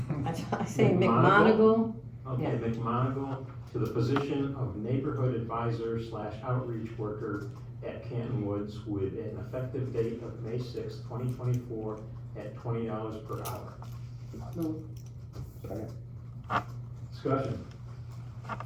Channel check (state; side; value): identical; both; correlation 1.00